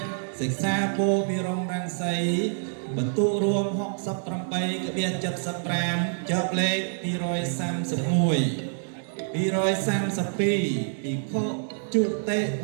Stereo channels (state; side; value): silent; left; digital silence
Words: សិក្សាពោពិរមរាំងសីបន្ទុករួម68ក្បៀក75ចប់លេខ231 232ភិក្ខុជុតិ